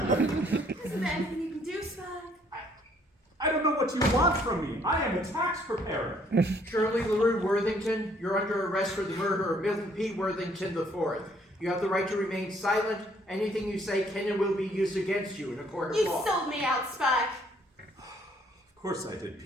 there anything you can do, Spike? I don't know what you want from me. I am a tax preparer. Shirley LaRue Worthington, you're under arrest for the murder of Milton P. Worthington IV. You have the right to remain silent. Anything you say can and will be used against you in a court of You law. sold me out, Spike. Of course I did,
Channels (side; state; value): both; normal; correlation 0.64